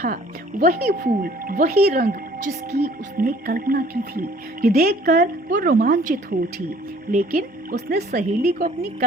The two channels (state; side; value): normal; both; correlation 0.56